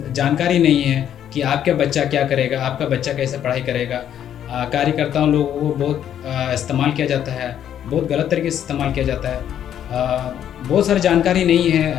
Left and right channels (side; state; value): right; quieter; 10.0 dB